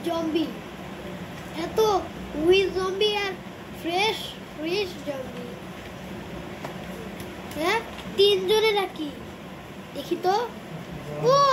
জম্বি, এত উইথ জম্বি আর ফ্রেশ জম্বি। হ্যাঁ, তিনজনে নাকি দেখি তো। ও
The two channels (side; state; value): both; identical; correlation 1.00